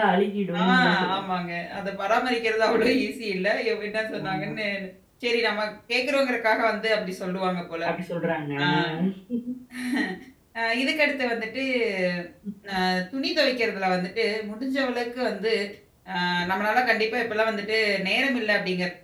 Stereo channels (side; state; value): both; identical; correlation 1.00